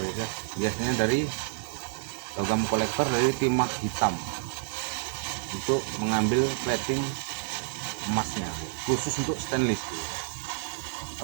ya, biasanya dari logam kolektor dari timah hitam. untuk mengambil plating emasnya, khusus untuk stainless.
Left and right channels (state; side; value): silent; left; 59 dB below the other